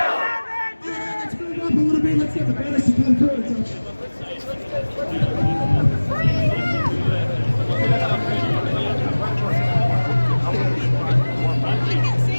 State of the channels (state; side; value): inverted; both; correlation -1.00